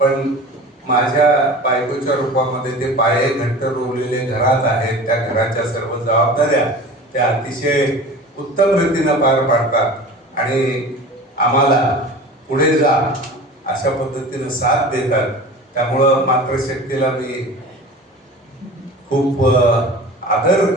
माझ्या बायकोच्या रूपामध्ये ते पाये घट्ट रोवलेले घरात आहेत. त्या घराच्या सर्व जबाबदाऱ्या त्या अतिशय उत्तम रीतीनं पार पाडतात आणि आम्हाला पुढे जा अशा पद्धतीनं साथ देतात. त्यामुळं मातृशक्तीला मी खूप आदर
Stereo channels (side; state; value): both; normal; correlation 0.37